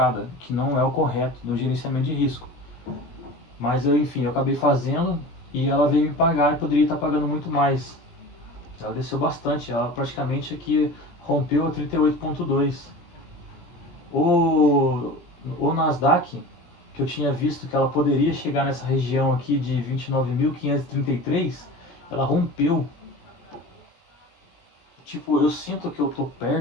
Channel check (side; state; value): right; late; 17 ms